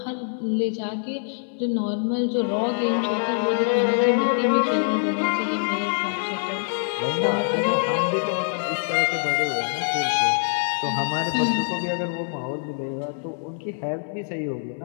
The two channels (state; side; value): silent; right; digital silence